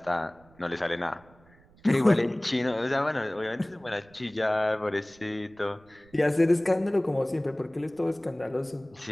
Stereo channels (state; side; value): noise; right; rumble, 28 dB below the sound